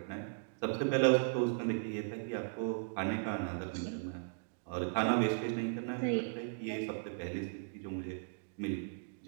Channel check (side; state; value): left; silent; digital silence